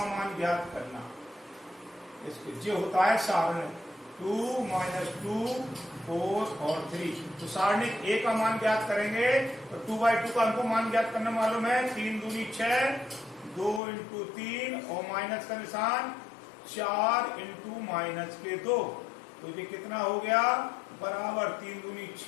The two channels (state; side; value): drops out; right; at 13.8 s